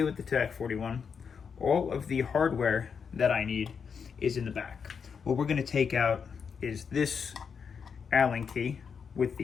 with the TAC41, all of the hardware that I need is in the back. What we're going to take out is this Allen key with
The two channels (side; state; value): right; quieter; 6.4 dB